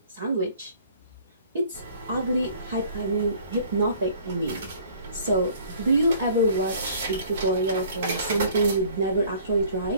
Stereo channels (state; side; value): inverted; both; correlation -0.53